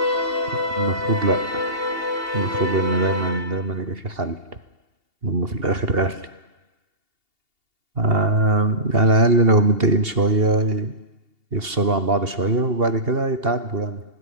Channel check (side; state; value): left; late; 2.8 ms